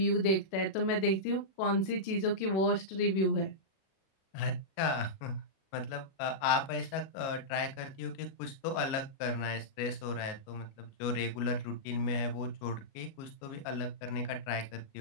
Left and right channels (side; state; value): right; late; 37 ms